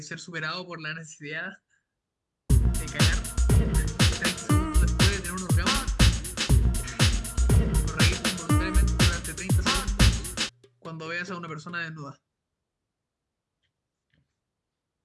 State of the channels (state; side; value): identical; both; correlation 1.00